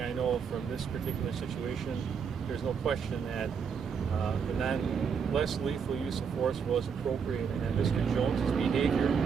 I know from this particular situation, there's no question that the less lethal use of force was appropriate, and Mr. Jones's behavior,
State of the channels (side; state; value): left; quieter; 6.5 dB